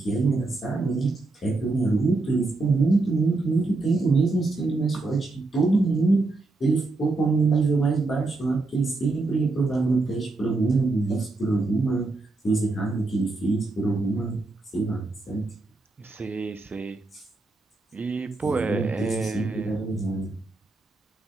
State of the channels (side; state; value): left; quieter; 3.3 dB